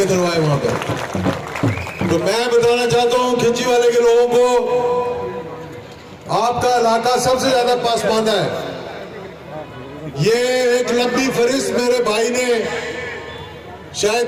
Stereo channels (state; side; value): identical; both; correlation 1.00